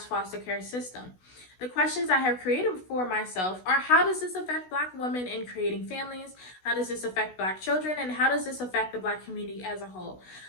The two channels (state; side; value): late; right; 16 ms